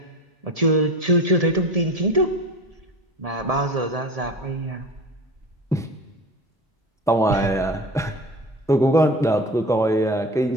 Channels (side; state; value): both; normal; correlation 0.34